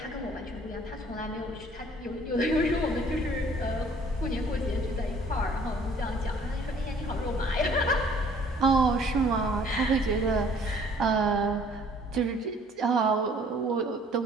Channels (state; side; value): normal; both; correlation 0.56